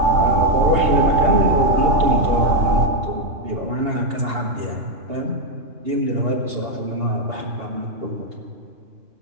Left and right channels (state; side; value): late; left; 2.7 ms